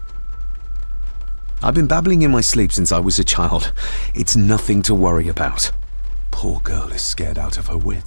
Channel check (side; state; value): both; inverted; correlation -1.00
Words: I've been babbling in my sleep since I was a child. It's nothing to worry about. Poor girl is scared out of her